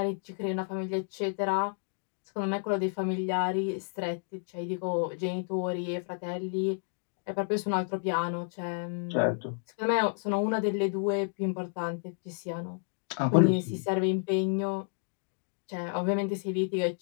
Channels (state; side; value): silent; right; 57 dB below the other